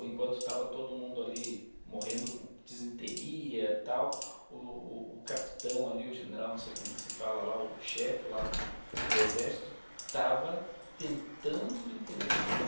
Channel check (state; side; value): inverted; both; correlation -1.00